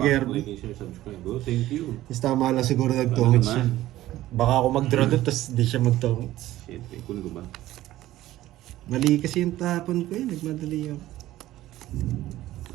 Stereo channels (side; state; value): left; quieter; 15.2 dB